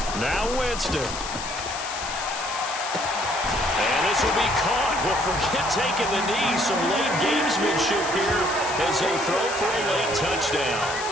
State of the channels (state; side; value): noise; left; hiss, 8 dB below the sound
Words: Now Winston. And this will be caught. Well, forget taking the knee. Some late gamesmanship here as they throw for a late touchdown.